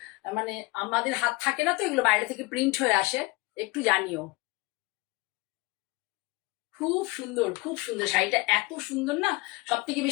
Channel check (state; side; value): quieter; right; 24.2 dB